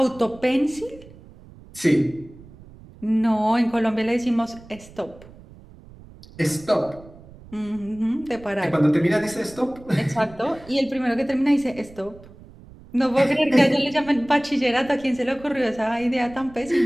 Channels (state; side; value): noise; right; rumble, 21 dB below the sound